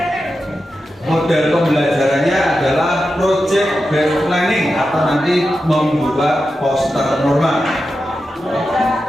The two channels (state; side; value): normal; both; correlation 0.90